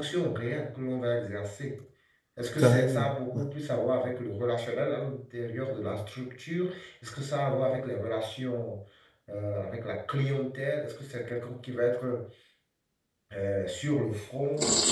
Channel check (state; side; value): identical; both; correlation 1.00